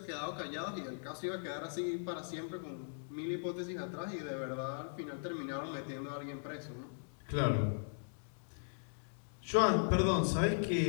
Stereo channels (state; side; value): silent; right; digital silence